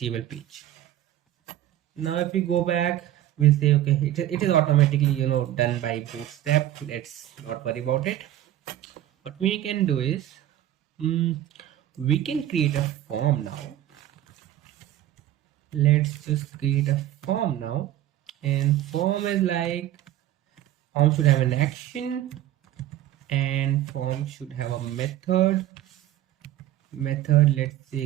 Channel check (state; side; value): quieter; left; 13.0 dB